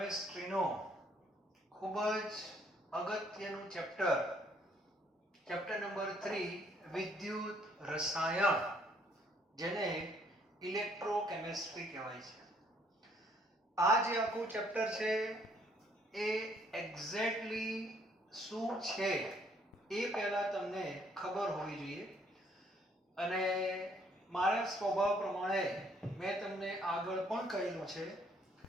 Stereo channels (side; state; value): both; normal; correlation 0.65